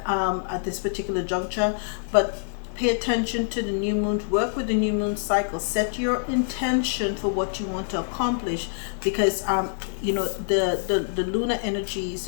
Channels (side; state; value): right; silent; digital silence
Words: at this particular juncture, but pay attention to the new moon. Work with the new moon cycle. Set your intention for what you want to accomplish, because the lunar energies,